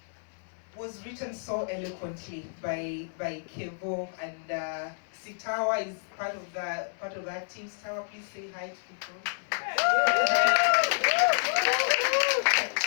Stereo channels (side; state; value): right; silent; 58 dB below the other